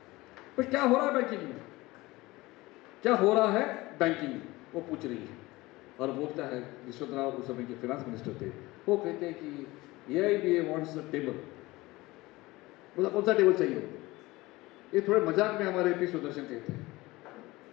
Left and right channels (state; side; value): quieter; right; 20.4 dB